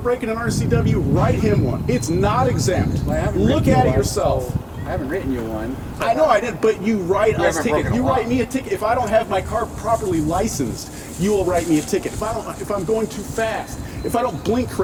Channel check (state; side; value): identical; both; correlation 1.00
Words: an RCW, write him one. It's not exempt. Well, I haven't Look written you at it one, yourself. so I haven't written you one. I know I didn't, but you write us haven't tickets. broken You the law. write me a ticket. If I don't have my car properly licensed, you will write me a ticket. If I'm going too fast, if I don't blink